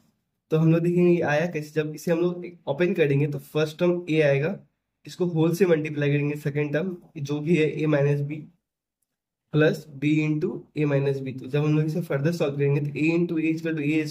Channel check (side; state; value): both; identical; correlation 1.00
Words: तो हम लोग देखेंगे ये आया कैसे। जब इसे हम लोग ओपन करेंगे तो फर्स्ट टर्म ए आएगा, इसको होल से मल्टीप्लाई करेंगे सेकेंड टर्म जो भी है a minus b plus b into a minus b. तो जब हम लोग इसे फर्दर सॉल्व करेंगे तो a into a equal to a